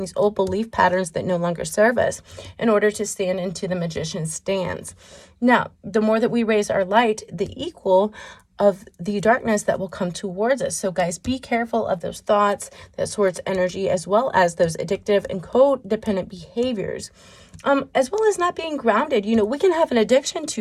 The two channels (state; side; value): identical; both; correlation 1.00